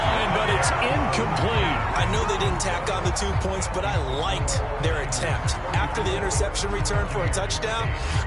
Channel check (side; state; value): both; identical; correlation 1.00